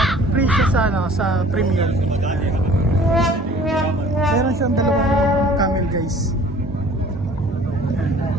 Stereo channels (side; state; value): both; normal; correlation 0.50